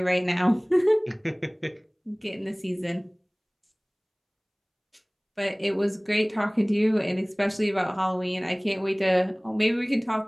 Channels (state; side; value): identical; both; correlation 1.00